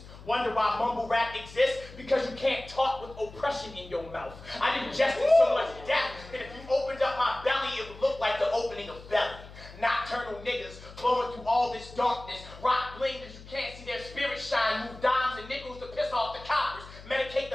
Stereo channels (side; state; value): left; noise; hum, 17 dB below the sound